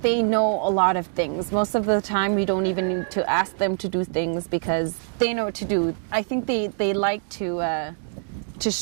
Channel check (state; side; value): silent; left; 62 dB below the other